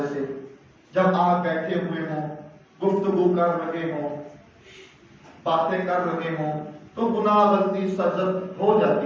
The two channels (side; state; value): both; identical; correlation 1.00